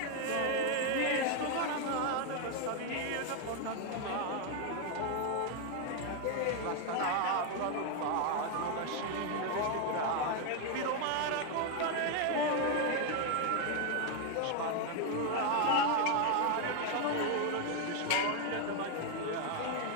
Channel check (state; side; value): different; both; correlation 0.01